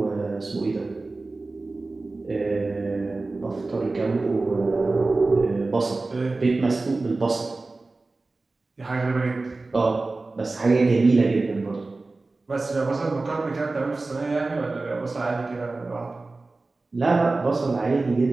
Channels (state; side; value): quieter; left; 3.4 dB